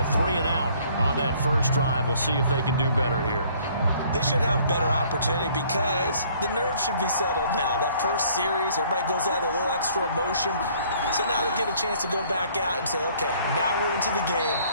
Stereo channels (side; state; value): both; inverted; correlation -0.59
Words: 3 and out on that first drive. We'll see if they can do better here. They should have a better opportunity because the nerves should be settled now. That first series, everybody goes out with a little extra emotion. So now they get a chance to go back out and say, okay, now we're into the game.